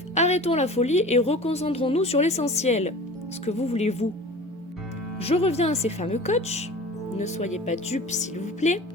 arrêtons la folie et reconcentrons-nous sur l'essentiel. Ce que vous voulez vous. Je reviens à ces fameux coachs. Ne soyez pas dupes s'il vous plaît.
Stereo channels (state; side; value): normal; both; correlation 0.39